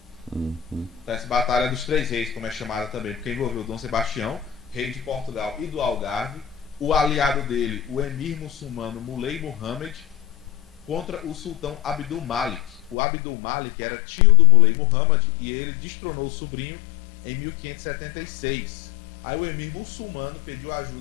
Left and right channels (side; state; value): right; drops out; at 13.0 s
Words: Então, essa Batalha dos Três Reis, como é chamada também, porque envolveu Dom Sebastião, rei de Portugal e do Algarve, o aliado dele, o emir muçulmano Muley Muhammad, contra o sultão Abdul Malik. O Abdul Malik era tio do Muley Muhammad e ele destronou o sobrinho em 1576. Aí o emir muçulmano pediu